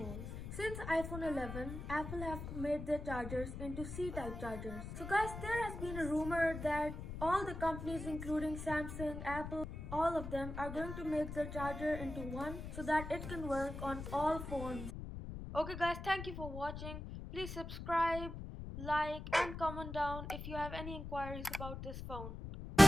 Since iPhone 11, Apple have made their chargers into C-type chargers. So guys, there has been a rumor that all the companies including Samsung, Apple, all of them are going to make their charger into one so that it can work on all phones. Okay guys, thank you for watching. Please subscribe, like and comment down if you have any inquiries about this phone.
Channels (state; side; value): noise; left; rumble, 8 dB below the sound